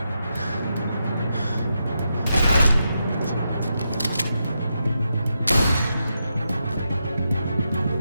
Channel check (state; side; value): inverted; both; correlation -0.85